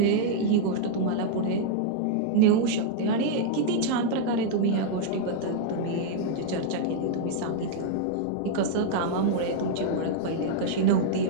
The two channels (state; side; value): different; both; correlation -0.01